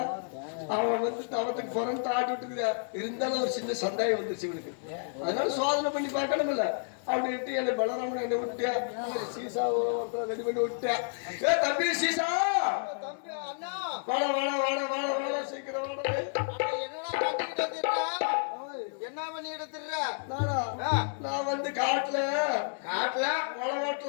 அவன் வந்து தவத்துக்கு புறந்து ஆட்டி விட்டுக்கிறியா. இருந்தாலும் ஒரு சின்ன சந்தேகம் வந்துருச்சு இவனுக்கு. அதனால சோதனை பண்ணி பார்க்கணும் இல்ல அப்படின்ட்டு என்ன பலராமன் என்ன விட்டியா, சீசா ரெடி பண்ணி விட்டியா. ஏ தம்பி சீசா, தம்பி அண்ணா, வாடா வாடா வாடா வாடா வாடா சீக்கிரம் வாடா. என்ன பண்ணிட்டு திர்ற? நான் வந்து காட்டுல காட்டுல மழை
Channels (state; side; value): silent; right; 57 dB below the other